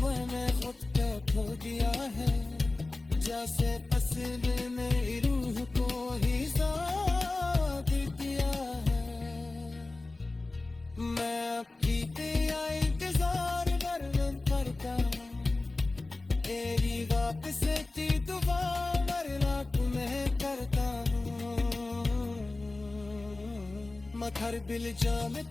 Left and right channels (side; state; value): right; quieter; 3.2 dB